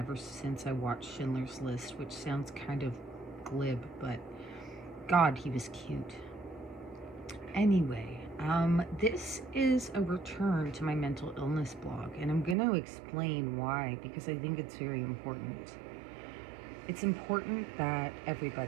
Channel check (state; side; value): drops out; left; at 12.6 s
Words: since I watched Schindler's List, which sounds kind of glib, but God, he was cute. Anyway, this is a return to my mental illness blog, and I'm going to explain why, because I think it's very important. It's important that